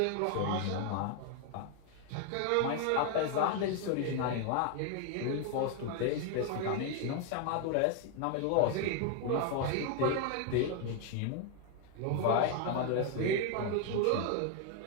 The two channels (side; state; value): both; different; correlation 0.00